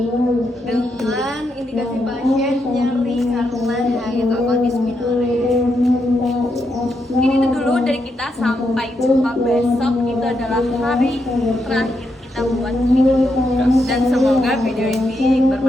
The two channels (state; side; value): normal; both; correlation 0.81